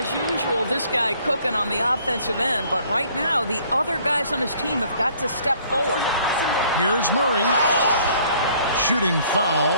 usual, this guy cooking on the offensive end. But right now, the other guys on his team have got to step forward. Here's Murray. Shooting foul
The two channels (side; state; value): both; inverted; correlation -0.59